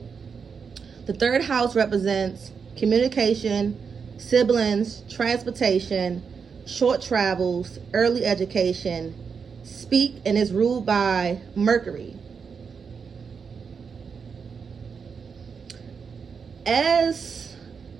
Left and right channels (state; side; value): quieter; left; 5.9 dB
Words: The third house represents communication, siblings, transportation, short travels, early education, speak, and is ruled by Mercury. As